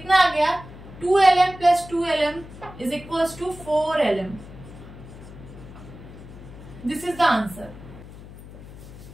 आ गया, 2lm plus 2lm is equals to 4lm। This is the answer.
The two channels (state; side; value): noise; left; hum, 16 dB below the sound